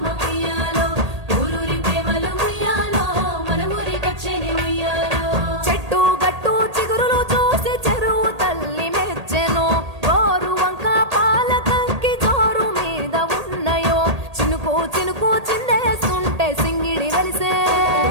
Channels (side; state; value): left; late; 1.8 ms